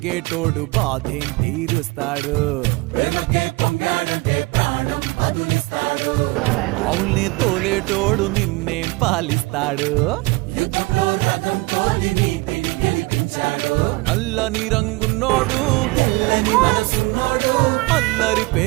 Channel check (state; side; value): quieter; left; 23.8 dB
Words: బాధేం తీరుస్తాడు. అవుల్ని తోలేటోడు నిన్నేం పాలిస్తాడు. నల్లని రంగున్నోడు అల్లరి